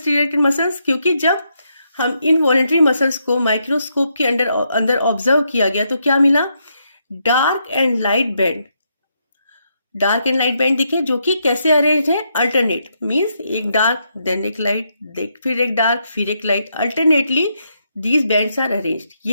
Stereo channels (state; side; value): inverted; both; correlation -0.79